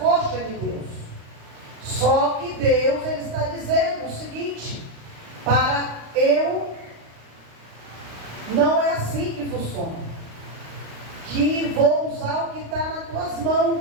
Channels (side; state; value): left; late; 35 ms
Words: de Deus. Só que Deus, Ele está dizendo o seguinte: para eu, não é assim que funciona. Que vou usar o que está nas tuas